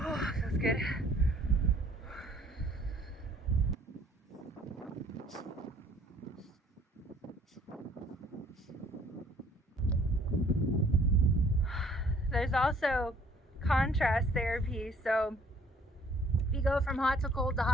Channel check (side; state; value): both; normal; correlation 0.58